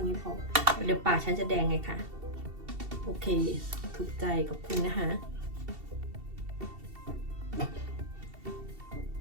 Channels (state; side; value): late; left; 2.7 ms